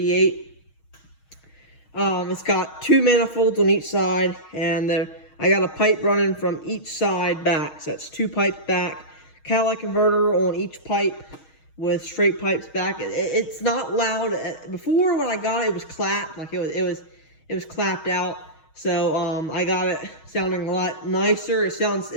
It's got two manifolds on each side, and I got a pipe running from each side back. So that's two pipes back. Catalytic converter on each pipe with straight pipes back. It's not loud. Before when I got it, it was clapped. Like it was clapped out. So I got it sounding a lot nicer. It's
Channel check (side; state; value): right; late; 6.3 ms